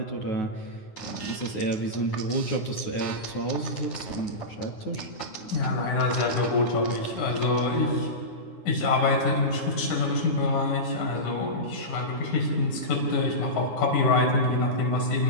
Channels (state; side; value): late; right; 9.7 ms